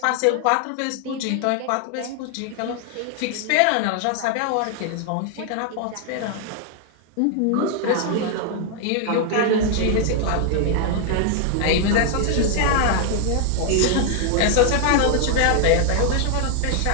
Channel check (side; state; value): both; different; correlation 0.00